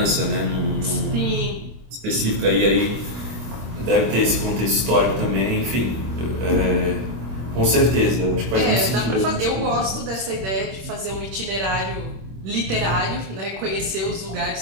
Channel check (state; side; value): late; left; 26 ms